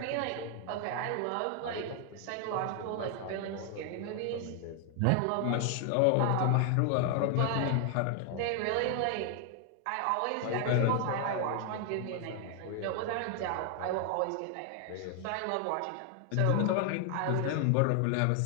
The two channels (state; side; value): different; both; correlation 0.00